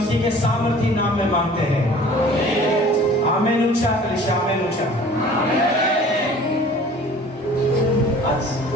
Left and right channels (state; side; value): normal; both; correlation 0.47